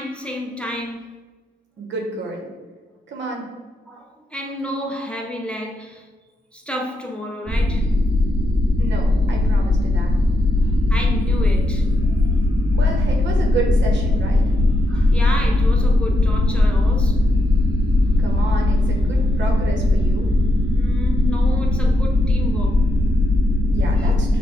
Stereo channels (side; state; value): both; normal; correlation 0.82